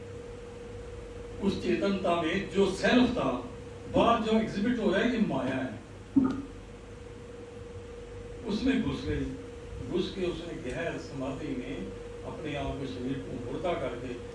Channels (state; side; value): identical; both; correlation 1.00